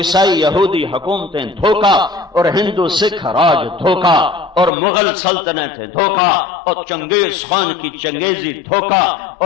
یہودی حکومتیں دھوکا، اور ہندو سکھ راج دھوکا، اور مغل سلطنتیں دھوکا، اور چنگیز خان کی چنگیزی دھوکا،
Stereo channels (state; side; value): drops out; right; at 4.7 s